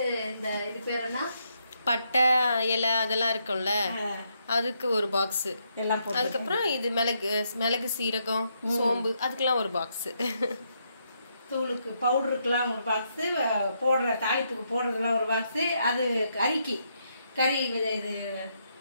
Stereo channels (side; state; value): both; inverted; correlation -0.77